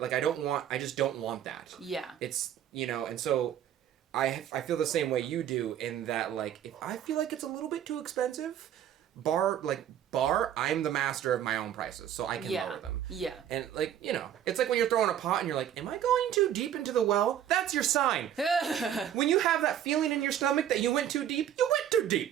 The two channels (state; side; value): quieter; left; 10.3 dB